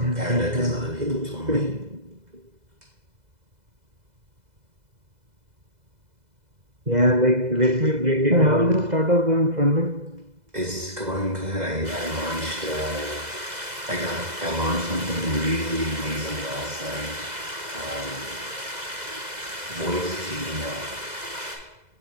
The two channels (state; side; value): late; left; 2.0 ms